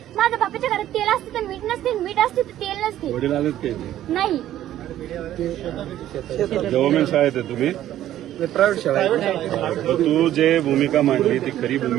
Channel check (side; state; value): left; quieter; 12.6 dB